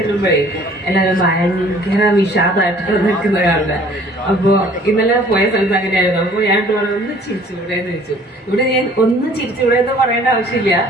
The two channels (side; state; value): both; normal; correlation 0.54